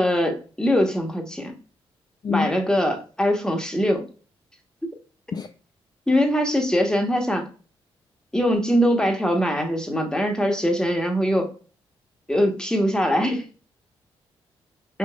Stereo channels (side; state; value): both; normal; correlation 0.85